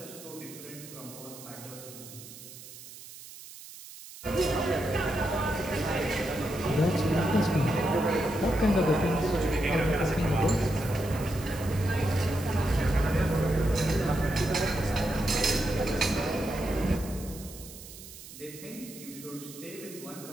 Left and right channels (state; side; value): noise; right; hiss, 16 dB below the sound